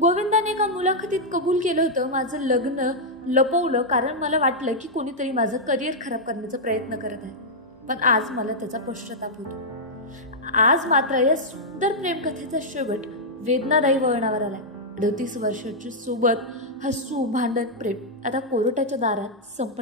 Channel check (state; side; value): normal; both; correlation -0.06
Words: गोविंदाने एका मुलाखतीत कबूल केलं होतं, माझं लग्न लपवलं कारण मला वाटलं की कोणीतरी माझं करिअर खराब करण्याचा प्रयत्न करत आहे, पण आज मला त्याचा पश्चाताप होतो. आज मात्र या सुंदर प्रेमकथेचा शेवट वेदनादायी वळणावर आलाय. 38 वर्षाची सोबत हसू, भांडण, प्रेम आता कोर्टाच्या दारात